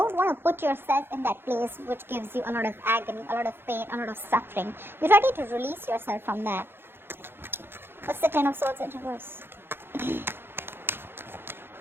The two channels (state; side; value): late; left; 0.11 ms